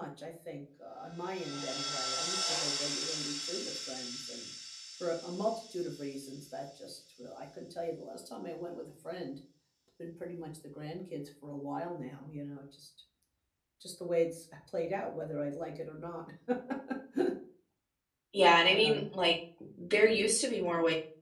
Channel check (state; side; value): identical; both; correlation 1.00